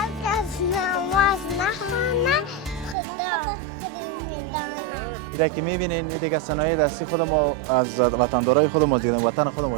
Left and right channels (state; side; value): drops out; left; at 3.0 s